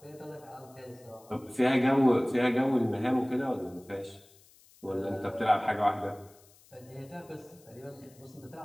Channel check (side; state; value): left; noise; hiss, 27 dB below the sound